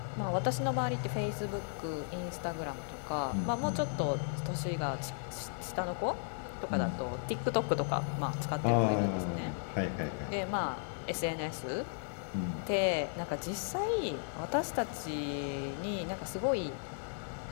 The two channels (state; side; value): silent; right; 54 dB below the other